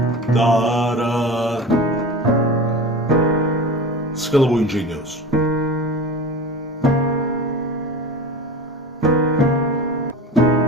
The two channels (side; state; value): both; normal; correlation 0.32